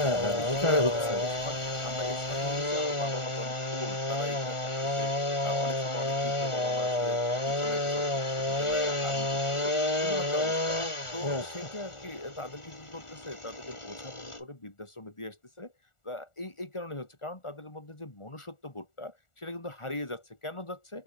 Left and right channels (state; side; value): late; right; 1.4 ms